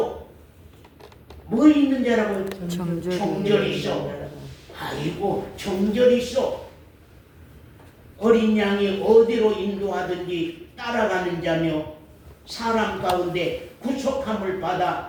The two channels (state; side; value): identical; both; correlation 1.00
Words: 뭐 있는 자라고? 정절이 있어. 아이고, 정절이 있어. 어린 양이 어디로 인도하든지 따라가는 자며 사람 가운데 구속함을